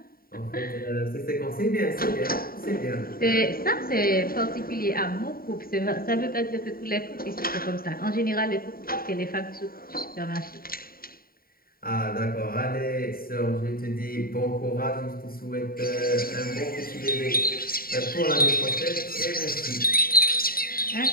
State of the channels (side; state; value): right; late; 0.43 ms